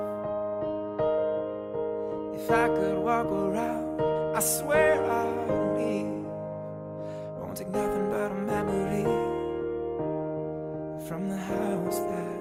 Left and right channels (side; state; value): both; identical; correlation 1.00